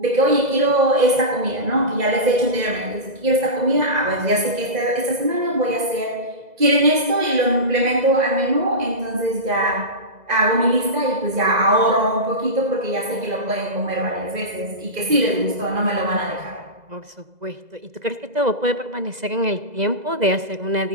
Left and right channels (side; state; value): left; late; 2.0 ms